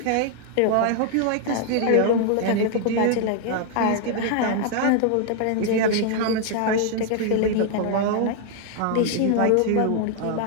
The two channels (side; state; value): both; different; correlation 0.00